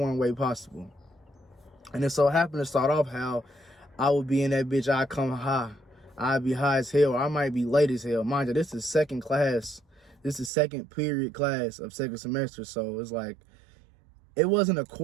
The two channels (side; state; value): left; drops out; at 10.5 s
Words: way possible. And it so happened to start off how I would be in that bitch, I'd come high. I'd be high as hell, or I might be late as hell. Mind you, this is second class. This is second period class of second semester. So it's like, it wasn't a